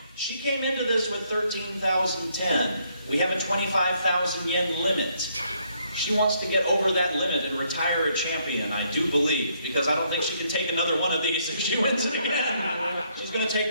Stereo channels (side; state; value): both; inverted; correlation -0.71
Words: She came into this with 13,010. We have a 25,000 yen limit. She wants to get over that limit and retire a champion, I do believe, because I don't think she can take another one of these if she wins it again. She's going to